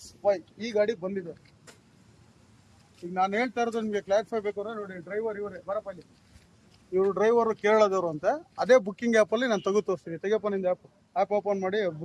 ಈ ಗಾಡಿ ಬಂದಿದೆ. ಈಗ ನಾನು ಹೇಳ್ತಾ ಇರೋದು ನಿಮಗೆ ಕ್ಲಾರಿಫೈ ಬೇಕು ಅಂದ್ರೆ ನೋಡಿ, ಡ್ರೈವರ್ ಇವರೇ ಬರಪಲ್ಲಿ. ಇವರು ಡ್ರೈವರು ಕೇರಳದವರು ಅಂತೆ. ಅದೇ ಬುಕ್ಕಿಂಗ್ ಆ್ಯಪಲ್ಲಿ ನಾನು ತೆಗೆದು ತೋರಿಸ್ತೀನಿ. ತೆಗೆಯಪ್ಪ ನಿಂದು ಆ್ಯಪ್ ಓಪನ್ ಮಾಡಿ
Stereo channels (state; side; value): identical; both; correlation 1.00